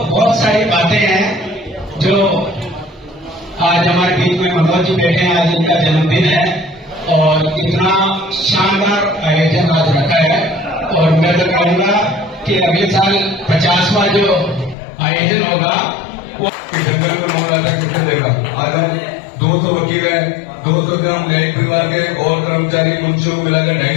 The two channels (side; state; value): right; drops out; at 14.8 s